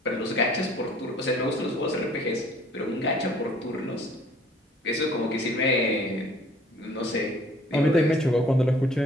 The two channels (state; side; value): normal; both; correlation 0.55